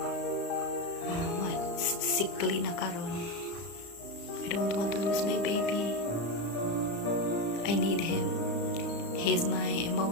sickly na karon. I don't want to lose my baby. I need him. He's my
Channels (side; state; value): right; late; 35 ms